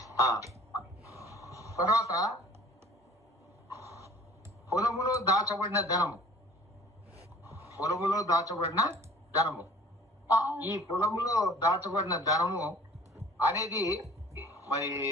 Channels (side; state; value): both; normal; correlation 0.50